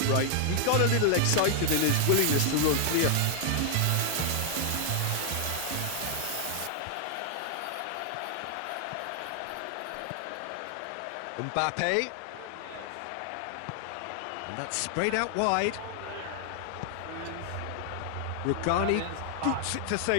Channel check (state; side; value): different; both; correlation 0.00